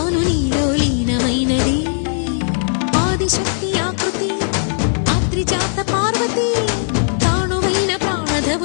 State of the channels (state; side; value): silent; right; 68 dB below the other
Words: నీలో లీనమైనది ఆదిశక్తి ఆకృతి ఆత్రిజాత పార్వతి తానువైన